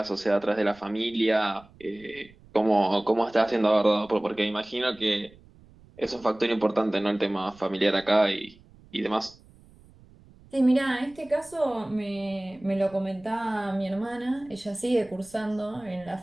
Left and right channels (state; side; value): noise; right; rumble, 26 dB below the sound